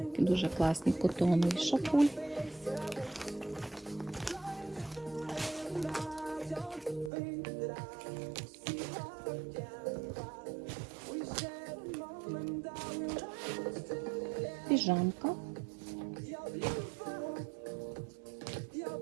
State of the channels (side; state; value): left; drops out; at 7.1 s